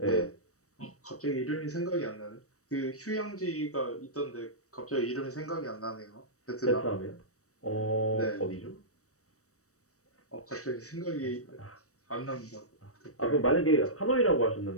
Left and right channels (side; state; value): right; late; 0.65 ms